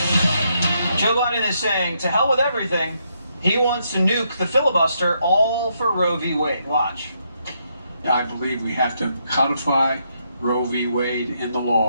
Joe Biden is saying, to hell with everything. He wants to nuke the filibuster, all for Roe v. Wade. Watch. I believe we have to codify Roe v. Wade in the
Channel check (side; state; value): both; inverted; correlation -0.77